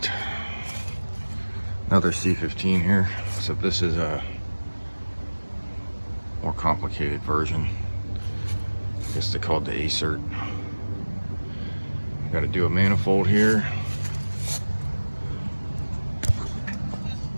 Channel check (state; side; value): inverted; both; correlation -1.00